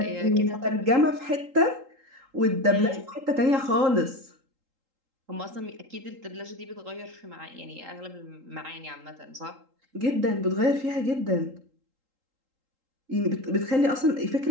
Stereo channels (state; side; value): late; left; 3.8 ms